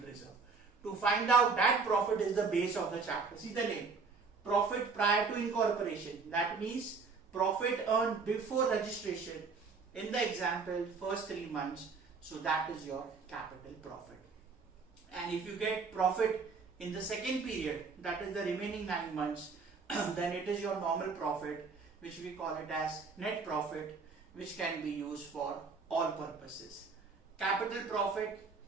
reserve. To find out that profit is the base of the chapter. See the name, profit prior to incorporation. That means profit earned before registration. In the example, first 3 months. So that is your capital profit. And if you get profit in the second period, that is the remaining 9 months, then it is your normal profit, which we call it as net profit, which can be used for all purposes. Capital profit,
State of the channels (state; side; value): quieter; left; 4.8 dB